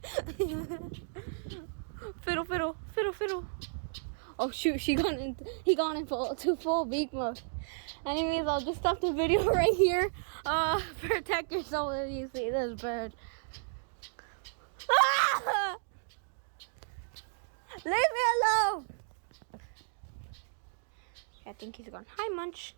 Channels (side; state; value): left; silent; digital silence